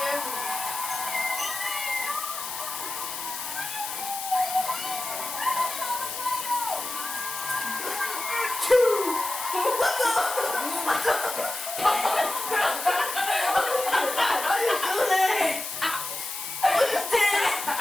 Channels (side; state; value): left; noise; hiss, 7 dB below the sound